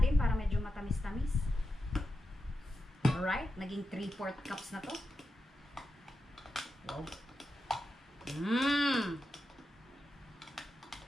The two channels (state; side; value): normal; both; correlation 0.89